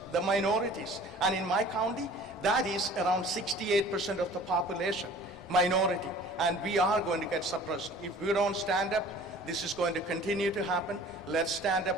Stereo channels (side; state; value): both; normal; correlation 0.47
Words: The minorities. And in my county, that is around 68% of the population, minority. And we are going to get suppressed. If we don't stand up, this is going to continue to happen. Let's stand